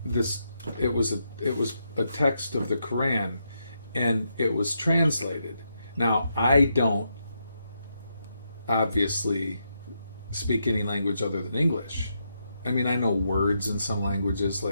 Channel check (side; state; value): both; inverted; correlation -0.81